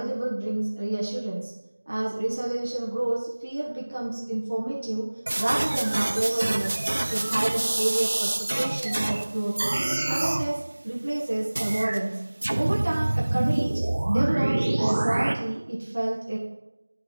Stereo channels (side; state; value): both; inverted; correlation -1.00